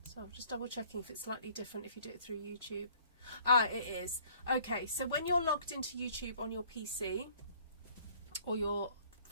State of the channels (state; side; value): inverted; both; correlation -0.58